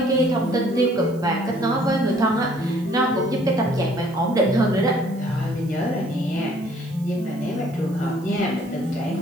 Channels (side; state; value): right; noise; hiss, 26 dB below the sound